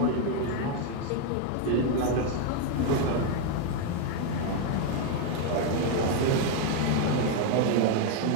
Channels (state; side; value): different; both; correlation 0.01